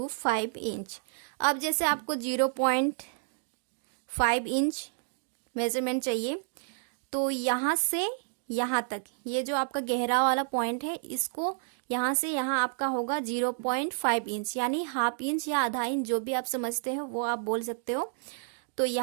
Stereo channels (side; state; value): left; silent; digital silence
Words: इंच। अब जैसे आपको 0.5 इंच मेजरमेंट चाहिए, तो यहाँ से यहाँ तक ये जो आपका गहरा वाला पॉइंट है, इसको यहाँ से यहाँ आपका होगा 0.5 इंच, यानी हाफ इंच या आधा इंच, जो भी आप समझते हो वो आप बोल सकते हो। तो